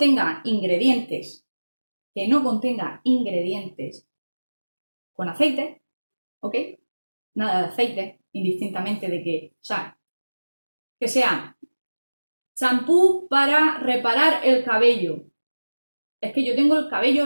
ingredientes que no contenga ingredientes con aceite, ¿ok? Nada de aceite, indistintamente de que, o sea, que sea champú para reparar el cabello. Es que yo tengo el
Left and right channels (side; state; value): both; inverted; correlation -1.00